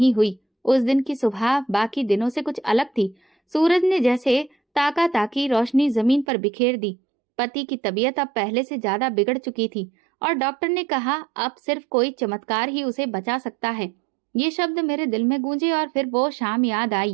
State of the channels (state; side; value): drops out; left; at 6.2 s